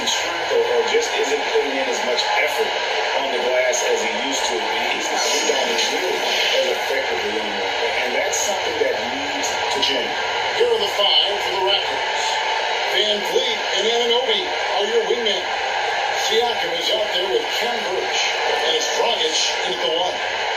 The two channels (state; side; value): identical; both; correlation 1.00